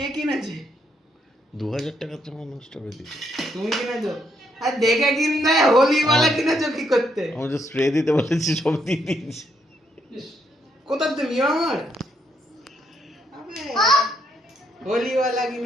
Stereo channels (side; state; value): both; normal; correlation 0.74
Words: কিনেছে? 2000 টাকার জামা নষ্ট করে দিচ্ছি। তুমি কিনেছো? আর দেখে কিনতে হোলি वाला কিনেছো কি করতে? আমি যে স্প্রে দিতে বলেছি সব দিয়ে দিয়েছি। ইস, কোথা তুমি আমার? আবে হোলি वाला